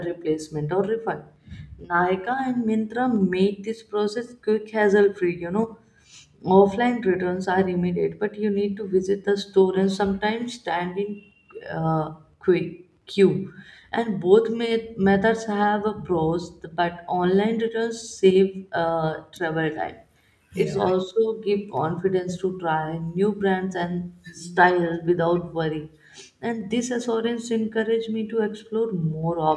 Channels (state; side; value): identical; both; correlation 1.00